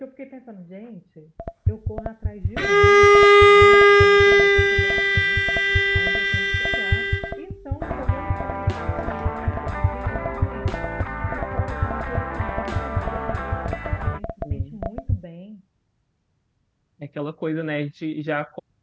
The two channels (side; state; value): both; identical; correlation 1.00